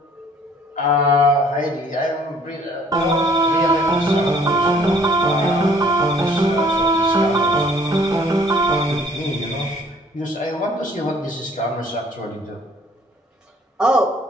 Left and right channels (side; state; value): both; normal; correlation 0.58